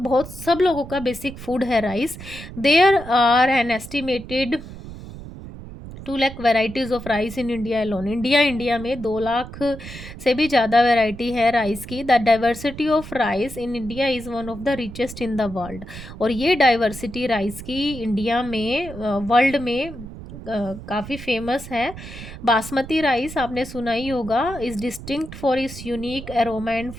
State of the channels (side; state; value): right; noise; rumble, 13 dB below the sound